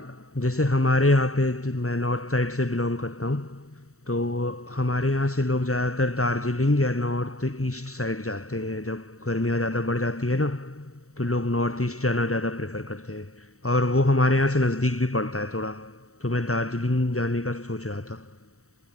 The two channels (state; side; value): late; right; 0.64 ms